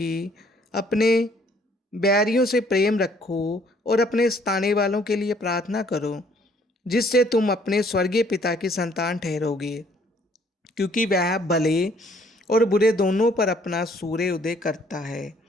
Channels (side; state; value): both; normal; correlation 0.62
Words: अपने बैरियों से प्रेम रखो और अपने सताने वालों के लिए प्रार्थना करो, जिससे तुम अपने स्वर्गीय पिता की संतान ठहरोगे, क्योंकि वह भले और बुरे दोनों पर अपना सूर्य उदय करता है